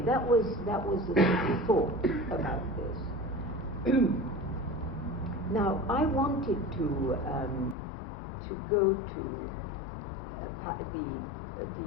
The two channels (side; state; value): right; drops out; at 7.8 s